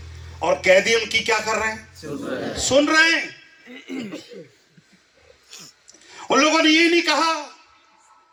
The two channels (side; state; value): both; identical; correlation 1.00